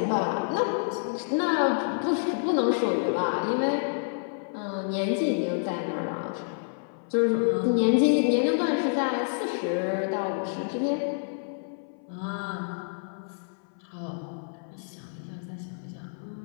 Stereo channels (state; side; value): silent; right; 59 dB below the other